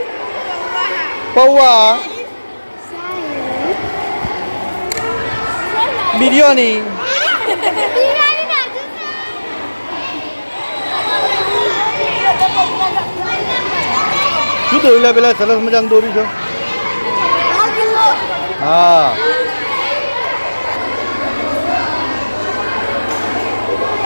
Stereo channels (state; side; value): inverted; both; correlation -1.00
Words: પૌવા બિરયાની શું દોરી પેલા સરસ મજાનું દોરી છે હા